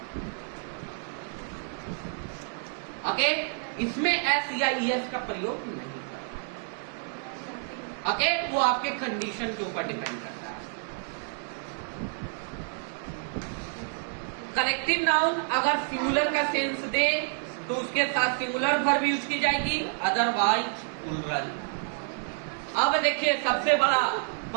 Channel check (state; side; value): silent; left; 59 dB below the other